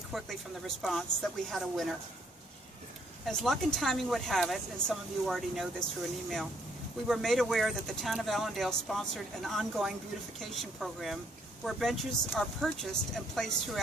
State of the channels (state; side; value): normal; both; correlation 0.67